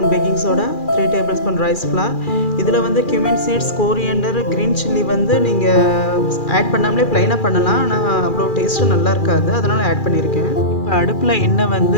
baking soda, 3 tablespoon rice flour. இதில் வந்து cumin seeds, coriander, green chilli வந்து நீங்கள் ஆட் பண்ணாமலே ப்ளைனாக பண்ணலாம். ஆனால் அவ்வளோ டேஸ்ட்டு நல்லா இருக்காது, அதனால் ஆட் பண்ணியிருக்கேன். இப்போ அடுப்பில் எண்ணெய்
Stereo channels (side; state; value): right; late; 2.4 ms